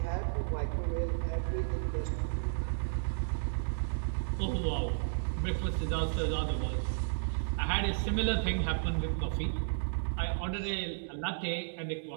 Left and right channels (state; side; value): silent; left; digital silence